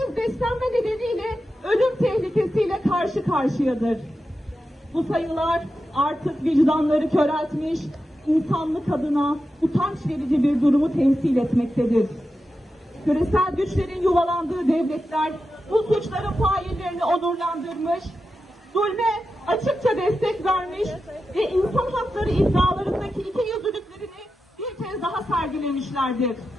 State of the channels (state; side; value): normal; both; correlation 0.90